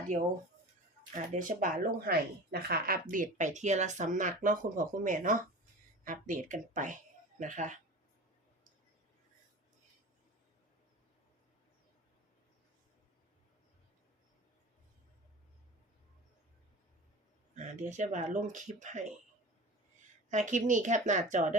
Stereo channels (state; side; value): normal; both; correlation 0.35